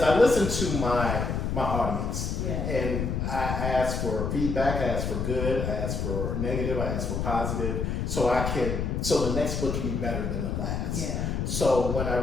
I listened to my my audience. Yeah. And I ask for feedback, I ask for good, I ask for negative, I ask for positive, so the next book can be better than the last. Yeah. So when I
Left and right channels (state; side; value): noise; left; rumble, 1 dB below the sound